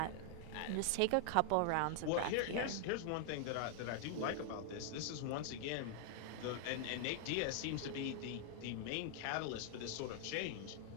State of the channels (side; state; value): both; different; correlation 0.00